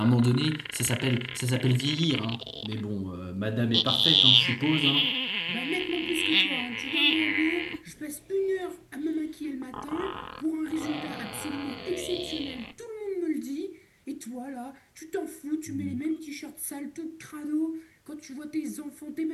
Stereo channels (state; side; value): identical; both; correlation 1.00